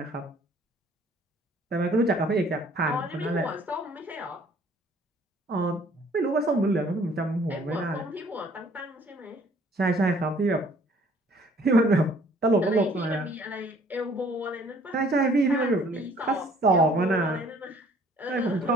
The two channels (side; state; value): both; normal; correlation 0.57